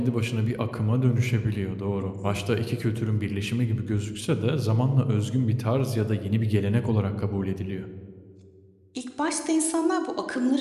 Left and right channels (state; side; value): identical; both; correlation 1.00